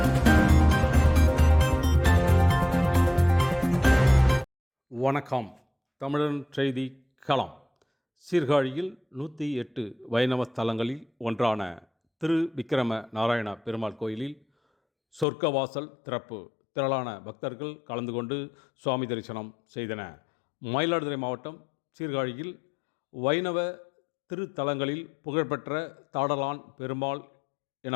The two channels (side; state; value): right; drops out; at 15.2 s